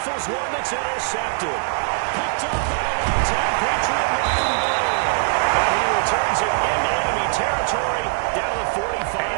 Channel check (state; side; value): silent; left; 59 dB below the other